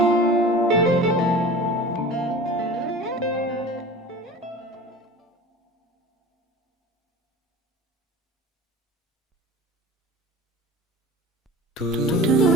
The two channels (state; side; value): normal; both; correlation 0.38